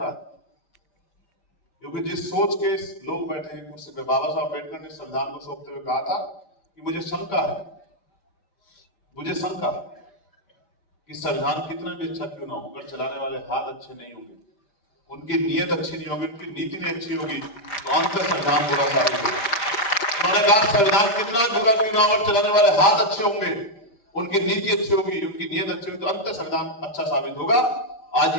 है? क्योंकि जिस सोच के लोग बैठे हैं कुर्सी पे, बाबा साहब अम्बेडकर ने संविधान को सौंपते हुए कहा था कि मुझे शंका है कि संविधान कितना भी अच्छा क्यों ना हो, अगर चलाने वाले हाथ अच्छे नहीं होंगे, उनकी नीयत अच्छी नहीं होगी, उनकी नीति नहीं अच्छी होगी, तो अंत संविधान बुरा साबित होगा। उन्होंने कहा संविधान कितना बुरा क्यों ना हो, अगर चलाने वाले हाथ अच्छे होंगे, उनकी नीति अच्छी होगी, उनकी नीयत अच्छी होगी, तो अंत संविधान अच्छा साबित होगा। आज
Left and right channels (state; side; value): late; right; 5.0 ms